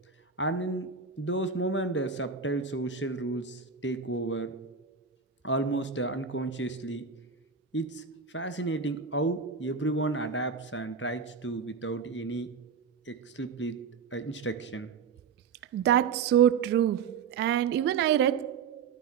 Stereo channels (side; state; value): left; quieter; 5.9 dB